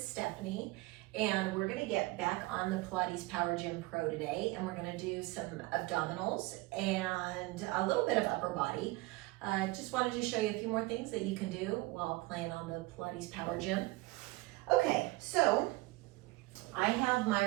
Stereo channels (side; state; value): left; quieter; 21.5 dB